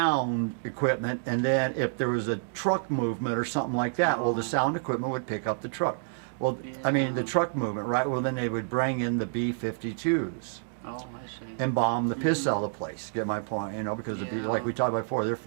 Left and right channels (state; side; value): silent; left; digital silence